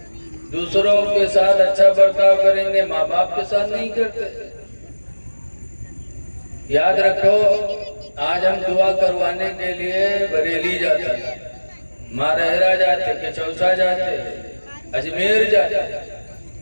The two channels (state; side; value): inverted; both; correlation -1.00